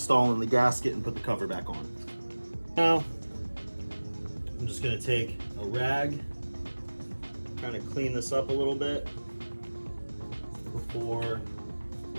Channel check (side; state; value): both; inverted; correlation -1.00